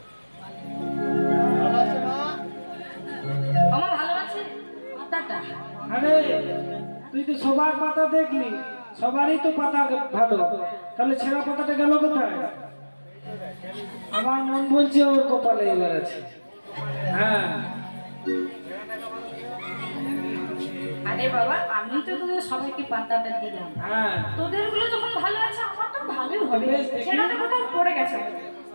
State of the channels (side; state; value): both; inverted; correlation -1.00